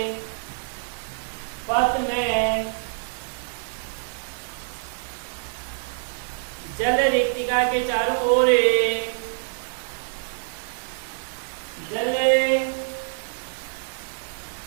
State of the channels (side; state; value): left; silent; digital silence